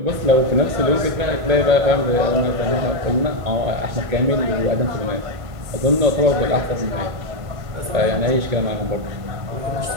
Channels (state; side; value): late; left; 1.5 ms